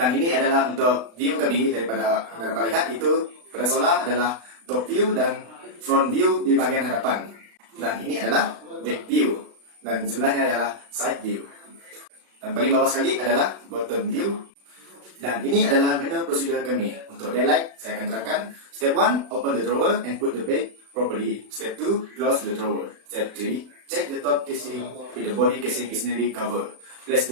ini adalah untuk view kami daripada anda dapat lihat itu pada solar adalah top view dan front view di bahagian hadapan. Dan ini adalah back view dan sebelahnya adalah side view. Dan paling bawah sekali adalah bottom view. Dan ini adalah manual prosedur kami. Untuk daylight, saya akan terangkan. Step 1, open the drawer and put the bed properly. Step 2, close the drawer. Step 3, check the top casing if the body casing is nearly covered. Place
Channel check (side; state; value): left; late; 36 ms